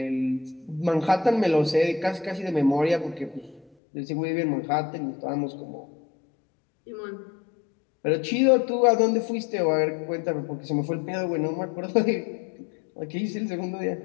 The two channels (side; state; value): right; drops out; at 3.7 s